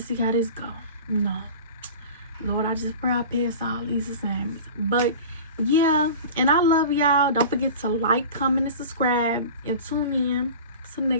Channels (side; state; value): both; inverted; correlation -0.36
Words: see how this go. No. Lord, I just pray I pass all these assignments. But yeah, and I love y'all. Don't forget to like, comment, and subscribe. And tune in to the